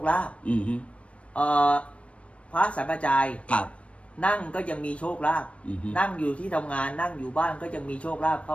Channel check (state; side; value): late; right; 0.062 ms